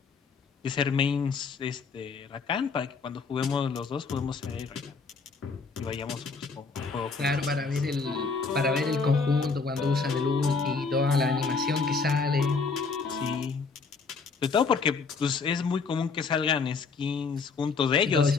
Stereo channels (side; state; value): right; quieter; 4.7 dB